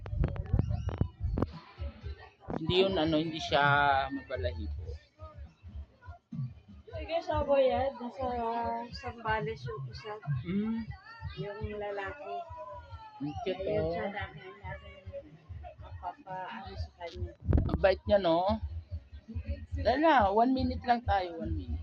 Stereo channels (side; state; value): both; identical; correlation 1.00